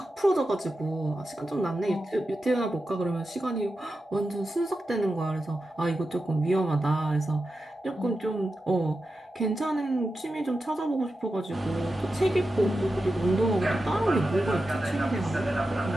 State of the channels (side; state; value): both; normal; correlation 0.91